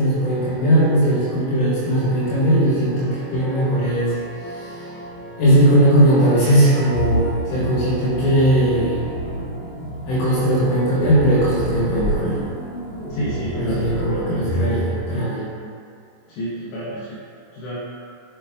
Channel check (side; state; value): right; late; 23 ms